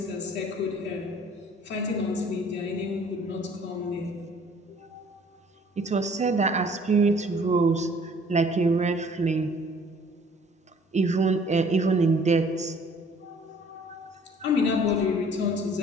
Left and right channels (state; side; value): normal; both; correlation 0.55